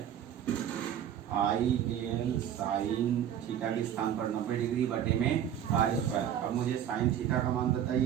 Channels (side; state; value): left; quieter; 9.9 dB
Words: I D L sine theta के स्थान पर 90 डिग्री बटे में r²। अब मुझे साइन थीटा का मान